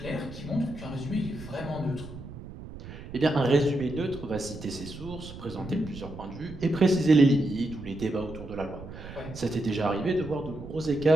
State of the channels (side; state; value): right; noise; rumble, 13 dB below the sound